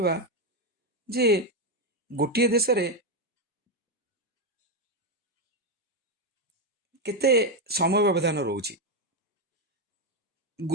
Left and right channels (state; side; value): normal; both; correlation 0.06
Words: ଯେ ଗୋଟିଏ ଦେଶରେ କେତେ ସମୟ ବ୍ୟବଧାନ ରହୁଛି।